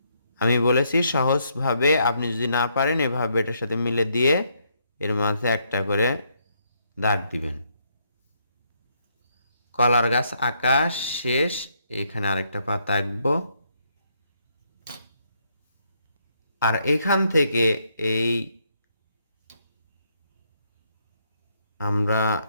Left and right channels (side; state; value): both; inverted; correlation -0.74